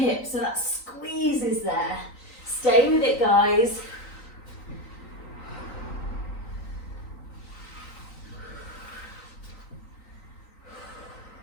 So that squeeze is there. Stay with it, guys.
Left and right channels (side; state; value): right; late; 3.9 ms